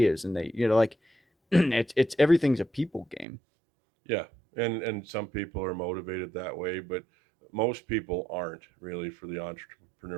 and they, like, it's everything's a people game. Yeah, and some people are motivated that way, but most people aren't really for the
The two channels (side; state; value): left; drops out; at 3.2 s